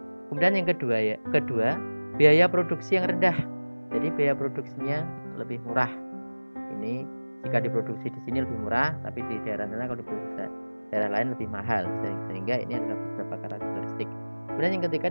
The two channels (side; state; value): both; inverted; correlation -1.00